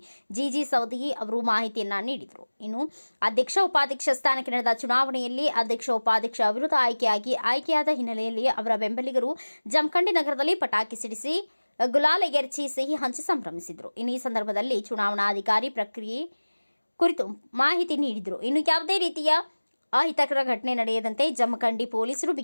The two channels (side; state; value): both; inverted; correlation -1.00